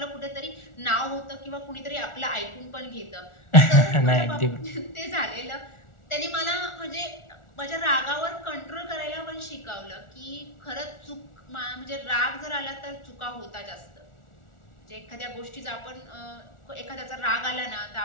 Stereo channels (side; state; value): right; late; 1.4 ms